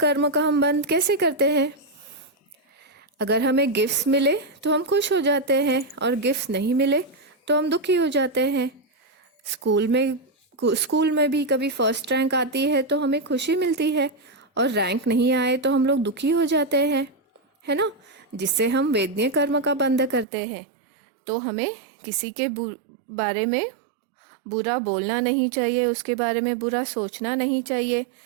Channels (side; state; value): left; drops out; at 20.2 s